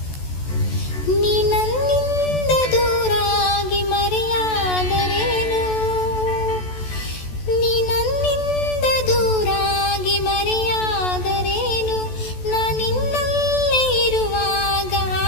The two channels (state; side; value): late; right; 14 ms